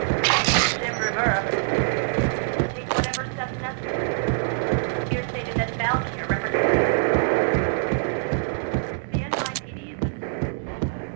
Jim Rivera, take whatever steps necessary. Here stated that Valkyr represents the NYPD is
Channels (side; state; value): left; silent; digital silence